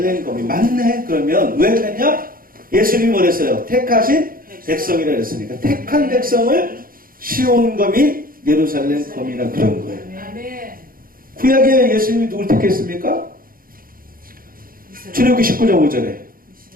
거민. 맞네. 그러면 왜 그랬냐? 예수님이 뭐랬어요? 택하신 백성이라 그랬으니까 택한 백성을 시온 거민, 예루살렘 거민이라 그런 거예요. 구약에 예수님이 누굴 택했습니까? 출애굽기 19장 5절에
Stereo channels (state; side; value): late; left; 0.42 ms